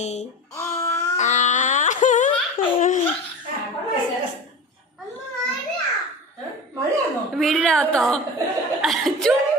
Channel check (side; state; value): both; normal; correlation 0.31